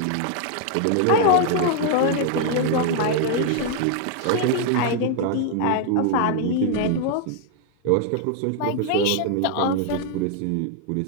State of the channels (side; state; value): both; different; correlation 0.00